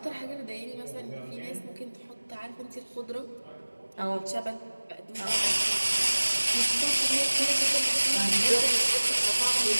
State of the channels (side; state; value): both; inverted; correlation -1.00